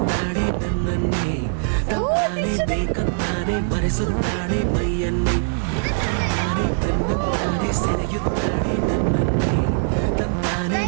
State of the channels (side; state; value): left; silent; digital silence